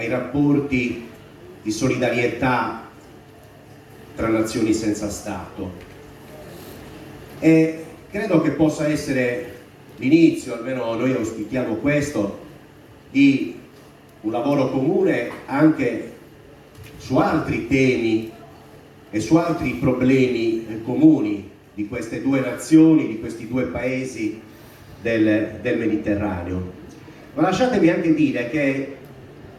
rapporti di solidarietà tra nazioni senza Stato, e credo che possa essere l'inizio, almeno noi auspichiamo questo, di un lavoro comune anche su altri temi e su altri problemi comuni di queste due nazioni, di questi due paesi del Mediterraneo. Ma lasciatemi anche dire che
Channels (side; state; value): both; identical; correlation 1.00